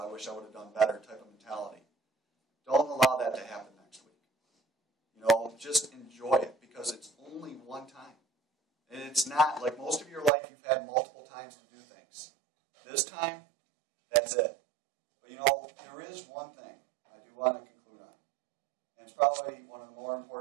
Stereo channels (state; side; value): drops out; left; at 10.3 s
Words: wish I would have done better type of mentality. Don't allow that to happen next week. Just enjoy it, because it's only one time. And it's not, like most of your life, you've had multiple times to do things. This time, that's it. But there is one thing I do want to conclude on. And it's probably one of the more